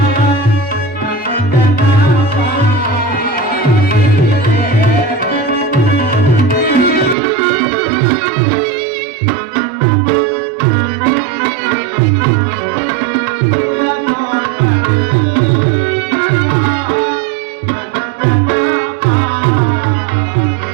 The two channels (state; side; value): drops out; left; at 7.2 s